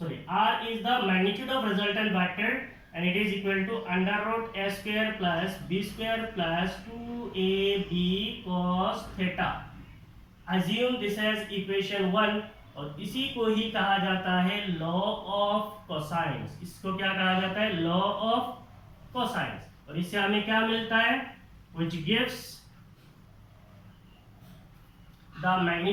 R is the magnitude of resultant vector and it is equal to under root a square plus b square plus 2ab cos theta. Assume this as equation 1 और इसी को ही कहा जाता है law of cosines. इसको क्या कहा जाता है? Law of cosines. और इससे हमें क्या मिलता है? which gives the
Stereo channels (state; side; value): identical; both; correlation 1.00